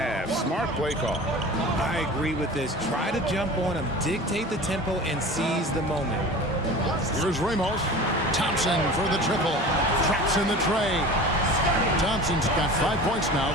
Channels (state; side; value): normal; both; correlation 0.37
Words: Smart play call. I agree with this. Try to jump on him, dictate the tempo, and seize the moment. Here's Ramos. Thompson for the triple. Traps in the tray. Thompson's got 5 points now